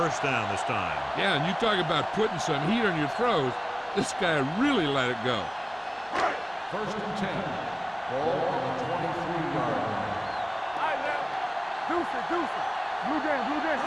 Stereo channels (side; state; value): both; identical; correlation 1.00